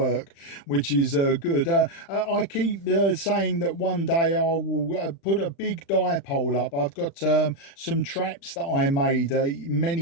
which is good. I keep saying that one day I will put a big dipole up. I've got some traps that I made many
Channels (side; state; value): right; late; 36 ms